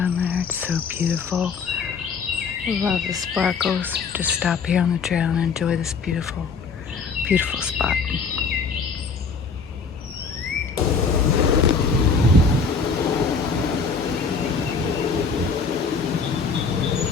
there. It's so beautiful. Love the sparkles. Just stop here on the trail and enjoy this beautiful, beautiful spot.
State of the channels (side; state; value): right; quieter; 5.1 dB